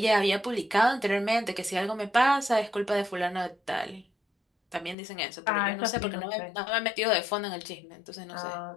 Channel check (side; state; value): right; drops out; at 5.0 s